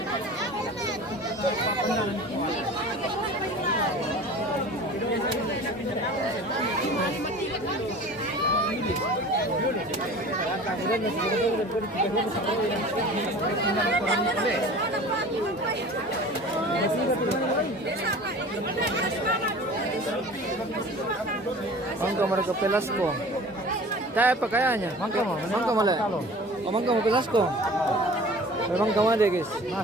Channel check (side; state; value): both; normal; correlation 0.41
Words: Mangga mereka Pelasco. Tayo pa kayanya. Mangga mo mala. O mangga mo Pelasco. Memang kamu ada guys.